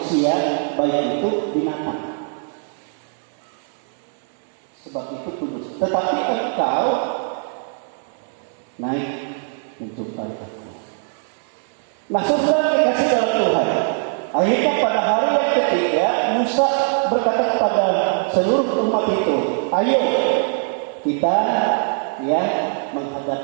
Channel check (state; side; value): silent; left; digital silence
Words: baik itu binatang. Sebab itu kudus. tetapi engkau naik menjumpai aku. Nah, saudara dikasih dalam Tuhan. Akhirnya pada hari yang ketiga, Musa berkata kepada seluruh umat itu, ayo kita